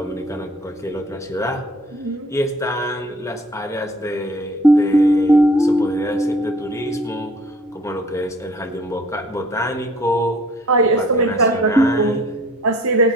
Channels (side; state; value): both; normal; correlation 0.54